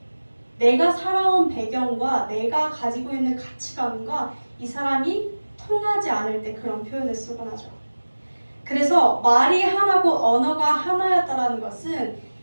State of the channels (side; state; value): both; inverted; correlation -1.00